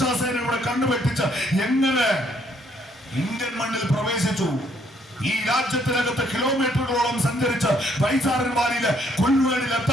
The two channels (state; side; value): normal; both; correlation 0.68